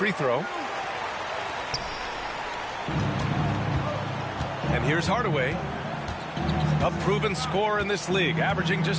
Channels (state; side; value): identical; both; correlation 1.00